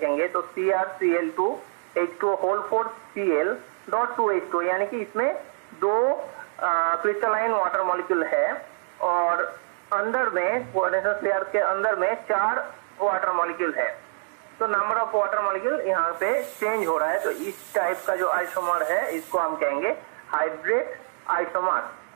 तो CrCl2H2O4Cl.2H2, यानी कि इसमें 2 क्रिस्टलाइन वाटर मॉलिक्यूल है और अंदर में कोऑर्डिनेशन स्फीयर के अंदर में 4 वाटर मॉलिक्यूल है। तो नंबर ऑफ वाटर मॉलिक्यूल यहाँ पे चेंज हो रहा है। तो इस टाइप का जो आइसोमर है इसको हम कहेंगे हाइड्रेट आइसोमर।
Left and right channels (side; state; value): left; silent; digital silence